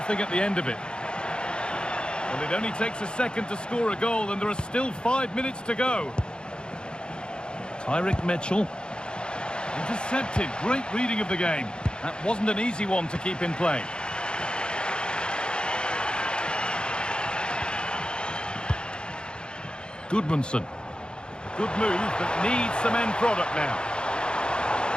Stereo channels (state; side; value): late; right; 0.050 ms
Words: at the end of it. Well, it only takes a second to score a goal, and there are still 5 minutes to go. Tyrick Mitchell. Intercepted. Great reading of the game. That wasn't an easy one to keep in play. Goodmanson. Good move, but needs some end product now.